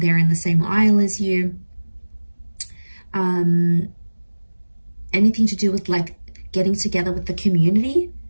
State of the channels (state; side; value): inverted; both; correlation -1.00